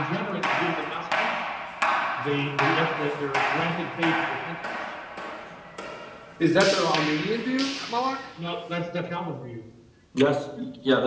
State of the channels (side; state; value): both; identical; correlation 1.00